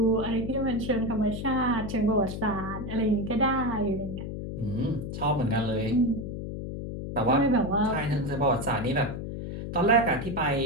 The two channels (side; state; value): left; noise; hum, 6 dB below the sound